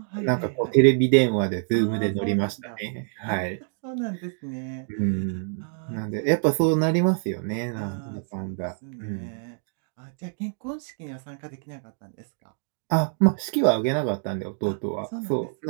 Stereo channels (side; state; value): left; silent; 61 dB below the other